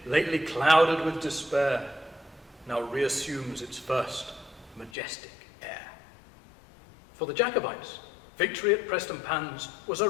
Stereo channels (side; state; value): right; drops out; at 4.9 s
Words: lately clouded with despair, now reassumes its first majestic air. For the Jacobites, victory at Prestonpans was a